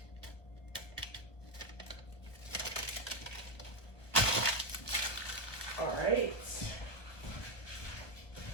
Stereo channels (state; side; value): late; right; 1.1 ms